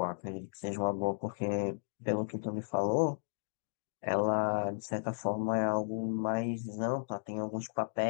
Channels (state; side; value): silent; right; digital silence